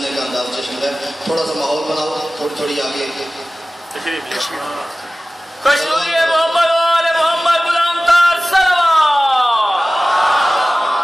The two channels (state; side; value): normal; both; correlation 0.97